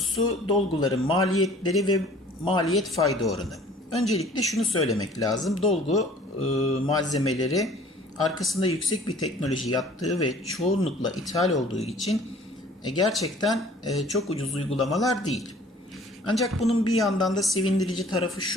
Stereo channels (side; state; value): both; normal; correlation 0.51